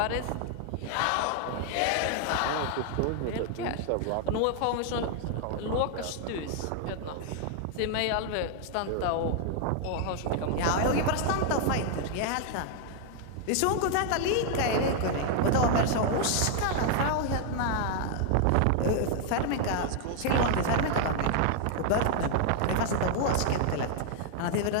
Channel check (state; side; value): different; both; correlation 0.00